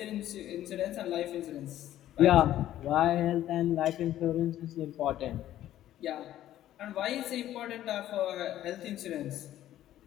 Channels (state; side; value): quieter; right; 12.8 dB